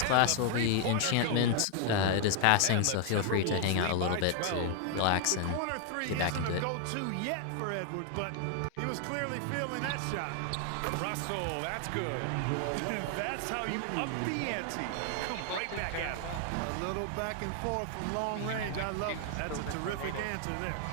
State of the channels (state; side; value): different; both; correlation 0.00